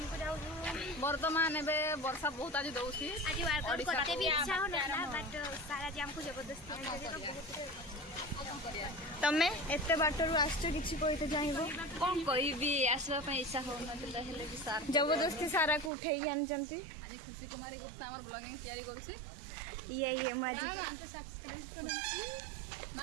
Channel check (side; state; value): left; drops out; at 15.9 s